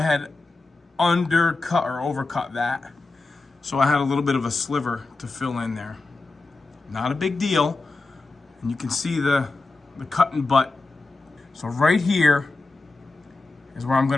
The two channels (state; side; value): quieter; right; 3.4 dB